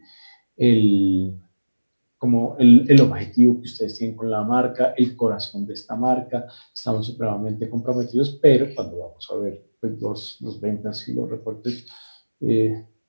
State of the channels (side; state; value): both; inverted; correlation -1.00